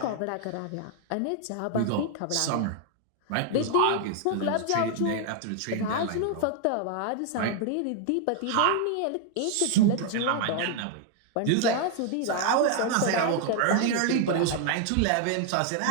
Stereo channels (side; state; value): both; different; correlation 0.00